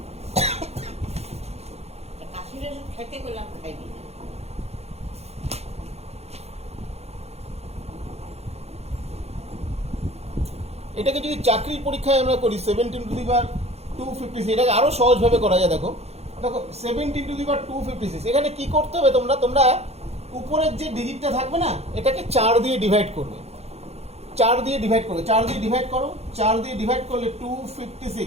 কাশিটা খাইতে করলাম খাইবি না। এটাকে যদি চাকরির পরীক্ষায় আমরা করি 17^256, এটাকে আরো সহজভাবে করা যায়। দেখো দেখো 17^256, এখানে কি করতে হবে তোমরা উপরের যে ডিজিটটা থাকবে না, এটাকে 4 দিয়ে ডিভাইড করবে। 4 দিয়ে ডিভাইড করবে, 4 দিয়ে ডিভাইড করো। 4 দিয়ে ডিভাইড করলে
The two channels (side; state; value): left; late; 0.31 ms